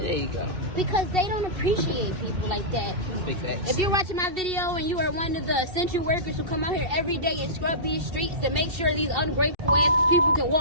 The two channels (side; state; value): left; late; 2.7 ms